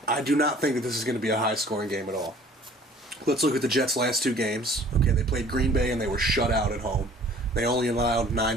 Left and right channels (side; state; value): both; normal; correlation 0.52